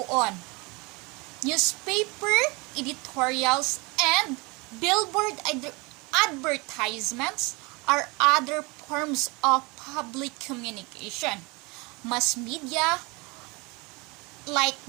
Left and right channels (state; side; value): quieter; left; 27.0 dB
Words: on. Newspaper editorials and billboard advertisements are other forms of public communication. Mass media like